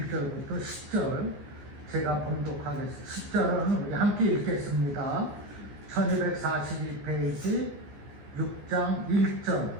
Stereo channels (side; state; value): left; late; 14 ms